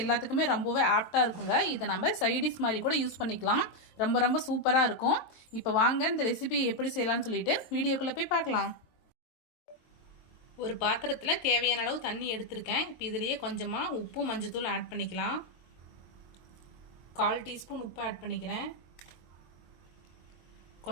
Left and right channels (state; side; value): late; right; 22 ms